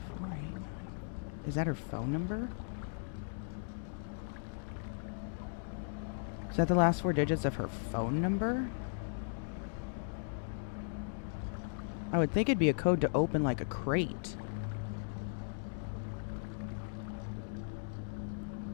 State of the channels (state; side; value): silent; right; digital silence